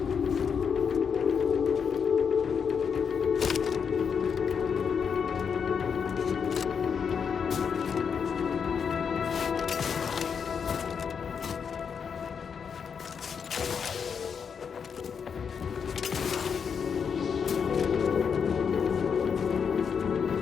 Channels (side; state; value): right; quieter; 6.6 dB